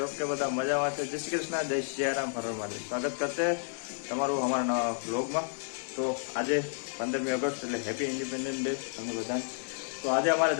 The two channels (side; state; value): right; silent; 57 dB below the other